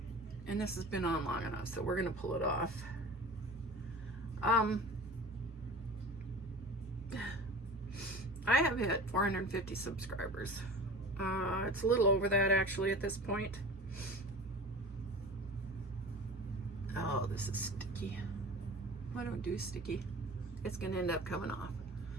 And this has been on long enough, so we're going to pull it off. I have hit 450 subscribers. It's a little over that actually at this point. Oh, this is sticky. I don't do sticky. It's gonna end up coming off.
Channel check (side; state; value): both; normal; correlation 0.37